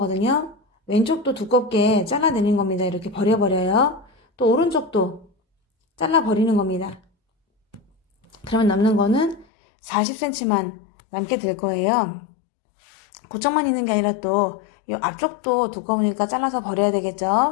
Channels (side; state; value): right; drops out; at 9.5 s